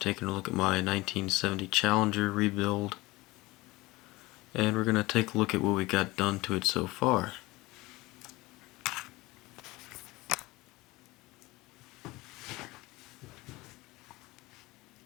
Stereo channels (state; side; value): quieter; right; 21.1 dB